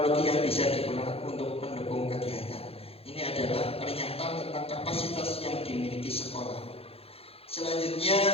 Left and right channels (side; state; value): right; late; 0.28 ms